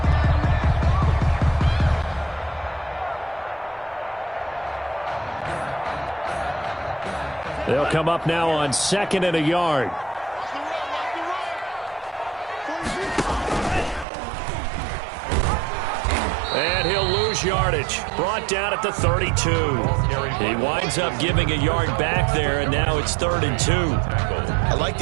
They'll come up now on 2nd and a yard. And he'll lose yardage. yardage. Brought down at the 32. He winds up giving a yard back there, and now it's 3rd and 2. I like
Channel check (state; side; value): drops out; left; at 14.1 s